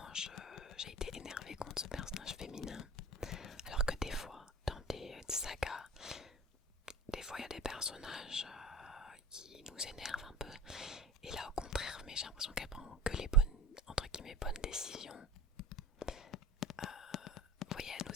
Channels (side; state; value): both; normal; correlation 0.36